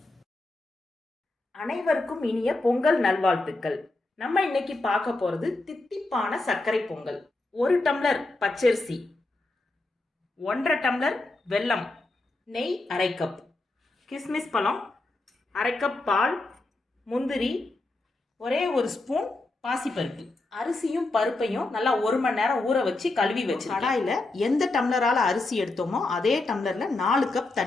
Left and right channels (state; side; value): quieter; right; 3.0 dB